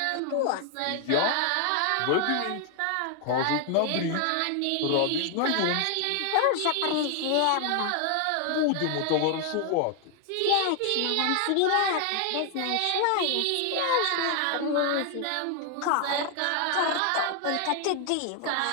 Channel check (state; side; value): different; both; correlation 0.00